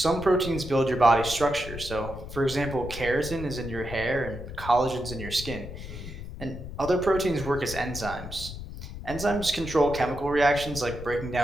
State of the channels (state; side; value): noise; left; rumble, 10 dB below the sound